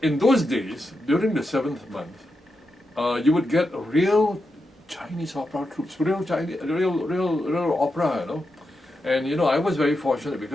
In those days, during the seventh month, you would get real Chinese opera troops, real opera, And I was very fortunate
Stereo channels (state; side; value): normal; both; correlation 0.87